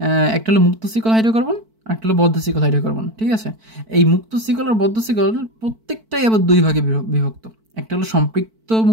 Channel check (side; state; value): left; late; 4.5 ms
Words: একটা হলো মুক্ত শিকল হাইড্রোকার্বন আর একটা হলো বদ্ধ শিকল হাইড্রোকার্বন। ঠিক আছে, এই মুক্ত শিকল আর বদ্ধ শিকল প্রত্যেকটাই আবার দুই ভাগে বিভক্ত। একটা হলো সম্পৃক্ত